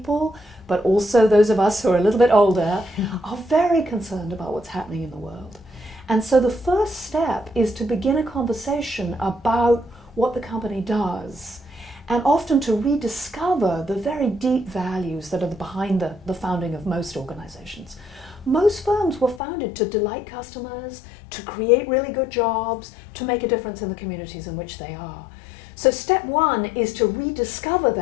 but also those of us who are a little bit older, are very concerned about what's happening in the world. And so the first step is to begin a conversation about what the company does, and often to rediscover the very deep values that are behind the founding of most organizations. Most firms were founded to delight customers, to create really good jobs, to make a difference in the communities in which they are. So step one is to rediscover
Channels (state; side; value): drops out; right; at 19.4 s